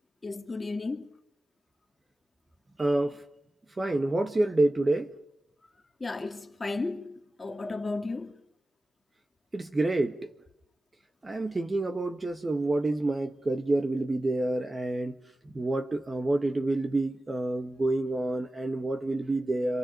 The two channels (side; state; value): both; normal; correlation 0.95